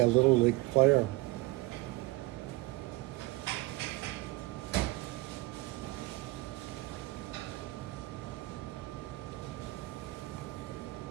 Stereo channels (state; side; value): quieter; left; 21.0 dB